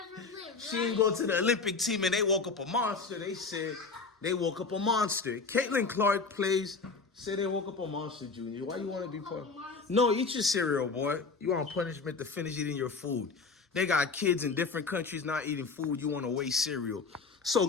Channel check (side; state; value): right; quieter; 4.5 dB